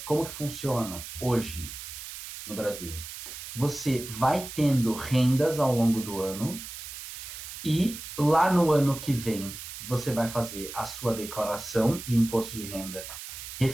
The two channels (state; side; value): noise; right; hiss, 10 dB below the sound